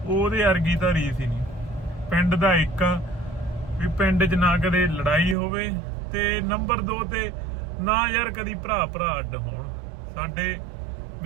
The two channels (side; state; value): left; drops out; at 5.4 s